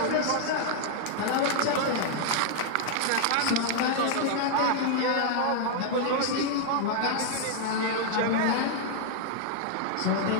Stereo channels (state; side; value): different; both; correlation 0.00